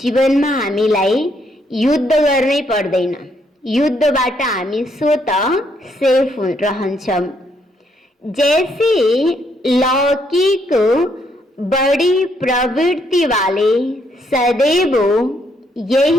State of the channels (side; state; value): both; normal; correlation 0.73